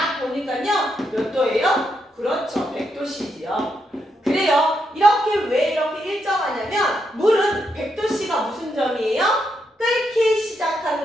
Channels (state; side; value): normal; both; correlation 0.81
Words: 보니까요, 몇 도예요? 그렇죠, 100도씨지요. 그래요. 왜 이렇게 일정하냐면 물은 100도씨가 무슨 점이에요? 끓기